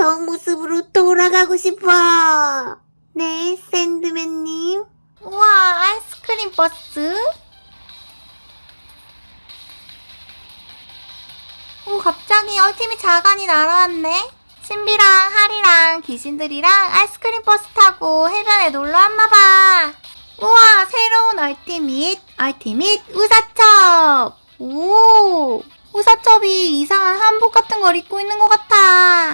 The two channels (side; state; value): both; inverted; correlation -1.00